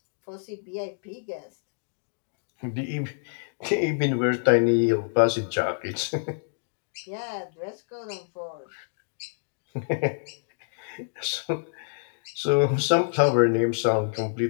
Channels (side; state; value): right; silent; digital silence